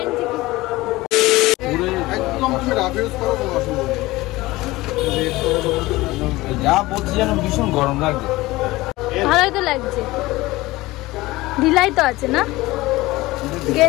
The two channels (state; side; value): quieter; right; 19.4 dB